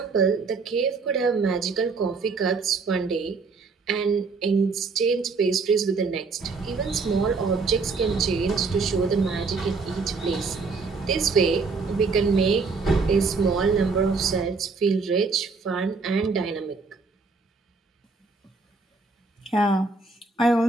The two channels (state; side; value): quieter; left; 4.4 dB